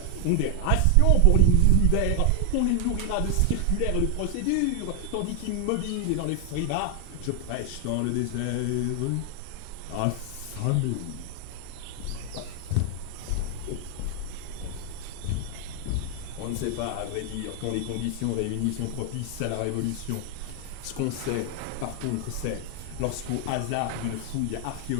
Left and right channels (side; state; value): both; different; correlation 0.00